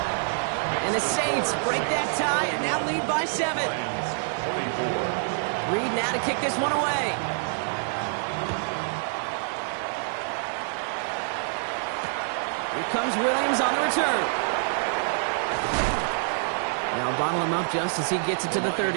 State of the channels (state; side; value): silent; left; digital silence